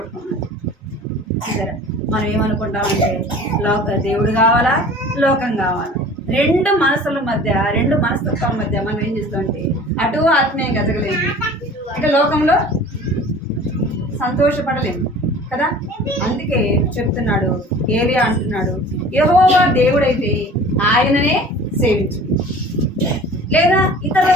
సరే, మనం ఏమనుకుంటామంటే దేవుడు కావాలా, లోకం కావాలా, రెండు మనసుల మధ్య, రెండు మనస్తత్వాల మధ్య మనం ఏం చేస్తామంటే అటు ఆత్మీయంగా ఎదగలేము, అంటే లోకంలో సంతోషపడలేము కదా. అందుకే చెప్తున్నాడు, ఏలియా అంటున్నాడు, యెహోవా దేవుడైతే ఆయననే సేవించు, లేదా ఇతర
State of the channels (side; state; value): both; normal; correlation 0.44